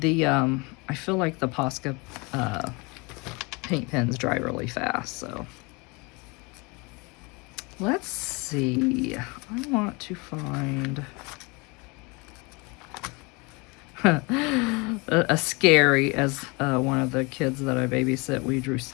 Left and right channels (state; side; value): quieter; right; 27.8 dB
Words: I feel like the Posca paint pens dry really fast, so. Let's see. I want to find a scary, as one of the kids that I babysit, we drew